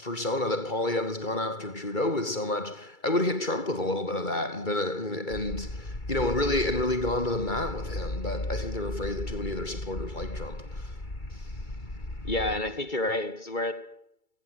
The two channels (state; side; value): late; right; 2.3 ms